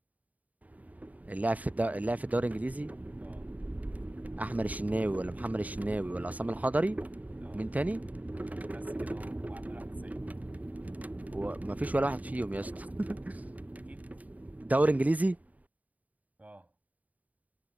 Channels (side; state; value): left; late; 0.073 ms